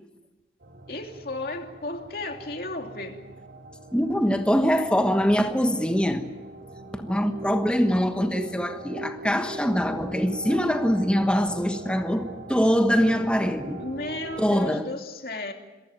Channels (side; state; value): both; normal; correlation 0.88